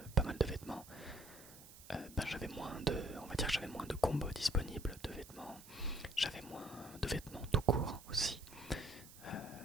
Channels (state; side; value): noise; right; hiss, 18 dB below the sound